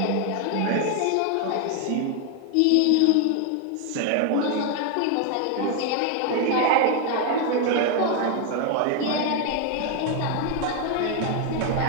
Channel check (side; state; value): both; different; correlation 0.01